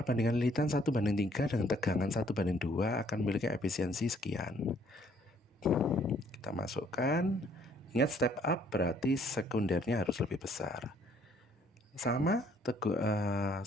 lilitan 1:3 dengan tegangan 1:2 akan memiliki efisiensi sekian. Kita masukkan. Ingat, step up berarti sekundernya harus lebih besar. Sama,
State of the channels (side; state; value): both; normal; correlation 0.63